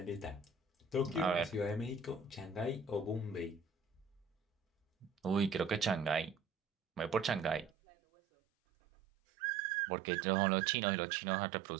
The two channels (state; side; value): drops out; left; at 7.7 s